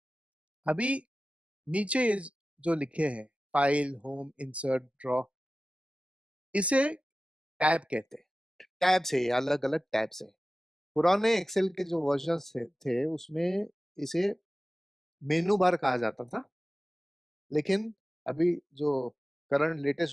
अभी नीचे ये जो लिखे हैं, फाइल, होम, इंसर्ट, ड्रॉ, इसे टैब कहते हैं। टैब से, अलग अलग टैब से। पुराने एक्सेल के जो वर्जन थे उसमें इसे मेनू बार कहा जाता था, लेकिन अभी जो करंट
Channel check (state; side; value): normal; both; correlation 0.96